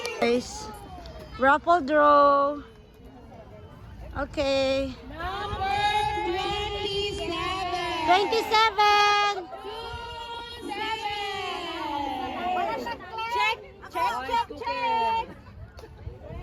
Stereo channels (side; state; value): both; identical; correlation 1.00